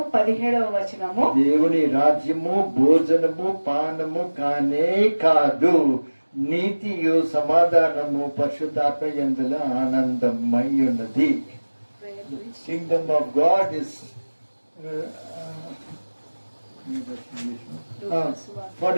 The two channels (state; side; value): inverted; both; correlation -1.00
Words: 17వ వచనము. దేవుని రాజ్యము భోజనము పానము కానే కాదు, నీతియు సమాధానము పరిశుద్ధాత్మ యందుల ఆనందమై ఉన్నది. Kingdom of God is for